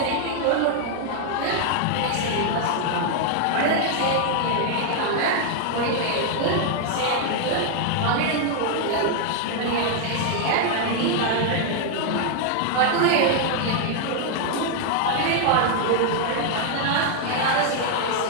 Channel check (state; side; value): different; both; correlation 0.00